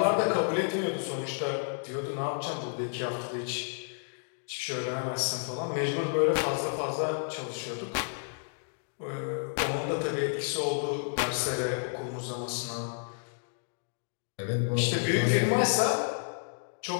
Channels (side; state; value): right; silent; digital silence